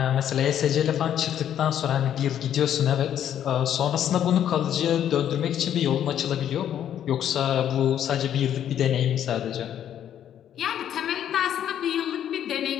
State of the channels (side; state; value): right; quieter; 10.2 dB